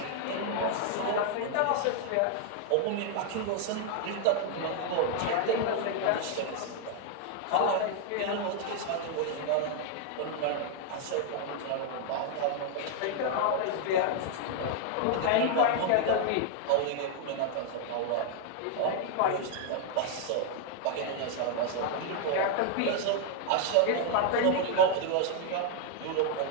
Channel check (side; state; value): both; different; correlation 0.00